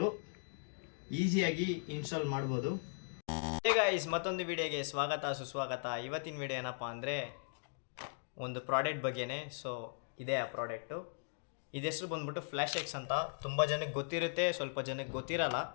ಈಸಿಯಾಗಿ ಇನ್ಸ್ಟಾಲ್ ಮಾಡ್ಬೋದು. ಹೇ ಗೈಸ್, ಮತ್ತೊಂದು ವಿಡಿಯೋಗೆ ಸ್ವಾಗತ ಸುಸ್ವಾಗತ. ಇವತ್ತಿನ ವಿಡಿಯೋ ಏನಪ್ಪ ಅಂದರೆ ಒಂದು ಪ್ರಾಡಕ್ಟ್ ಬಗ್ಗೆನೇ. ಸೊ ಇದೇ ಆ ಪ್ರಾಡಕ್ಟು. ಇದು ಹೆಸರು ಬಂದ್ಬಿಟ್ಟು ಫ್ಲ್ಯಾಶ್ ಎಕ್ಸ್ ಅಂತ. ತುಂಬ ಜನಕ್ಕೆ ಗೊತ್ತಿರುತ್ತೆ, ಸ್ವಲ್ಪ ಜನಕ್ಕೆ ಗೊತ್ತಿರಲ್ಲ.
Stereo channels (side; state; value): right; silent; digital silence